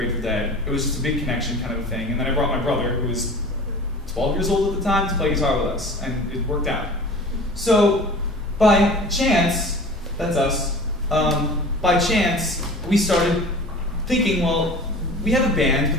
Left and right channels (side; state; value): both; normal; correlation 0.40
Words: Dead. It was just a big connection kind of a thing. And then I brought my brother, who was 12 years old at the time, to play guitar with us. And it worked out. So by chance, that's us. By chance, we started thinking, well, we have a band,